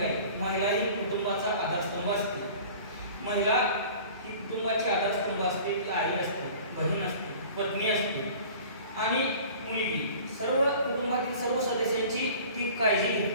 आहे। महिला ही कुटुंबाचा आधारस्तंभ असते। महिला ही कुटुंबाची आधारस्तंभ असते। ती आई असते, बहीण असते, पत्नी असते आणि मुलगी। सर्व कुटुंबातील सर्व सदस्यांची ती काळजी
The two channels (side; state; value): both; inverted; correlation -0.44